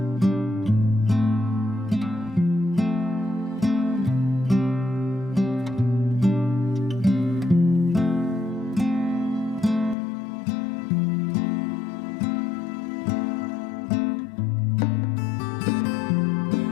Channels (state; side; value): drops out; right; at 10.0 s